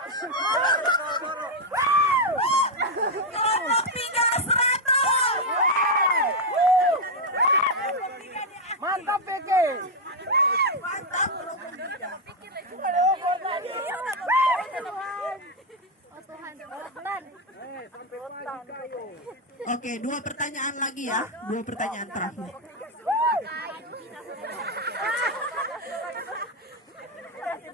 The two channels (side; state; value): both; normal; correlation 0.02